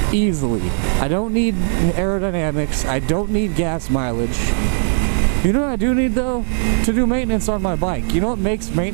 easily. I don't need aerodynamics. I don't need gas mileage. You know what I do need though? To do maintenance on my bike. You know what makes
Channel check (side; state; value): left; silent; digital silence